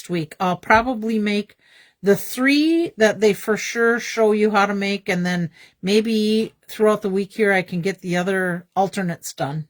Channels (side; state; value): both; identical; correlation 1.00